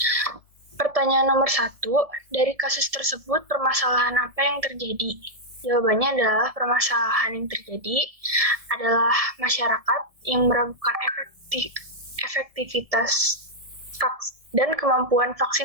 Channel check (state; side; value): late; left; 1.7 ms